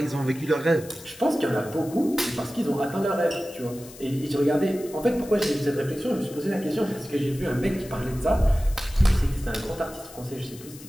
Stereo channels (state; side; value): noise; left; hiss, 18 dB below the sound